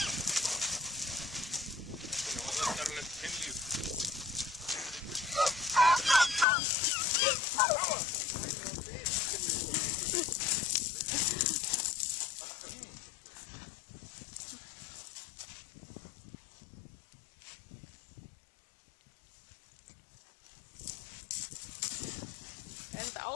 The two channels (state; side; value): drops out; right; at 6.5 s